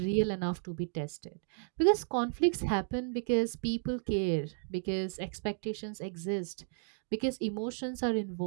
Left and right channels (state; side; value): silent; left; 55 dB below the other